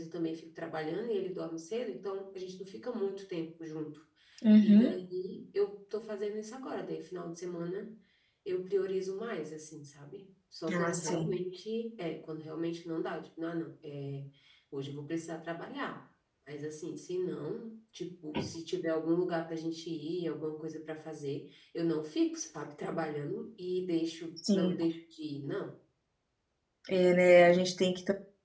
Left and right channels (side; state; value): both; identical; correlation 1.00